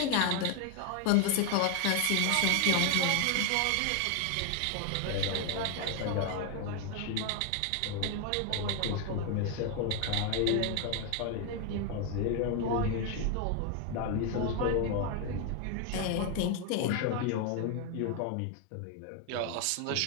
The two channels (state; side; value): different; both; correlation 0.01